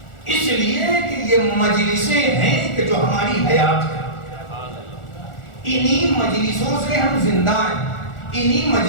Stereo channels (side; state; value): right; late; 1.4 ms